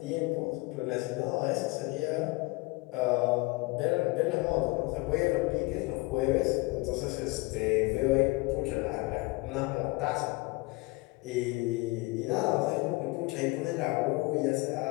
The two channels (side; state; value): right; quieter; 24.6 dB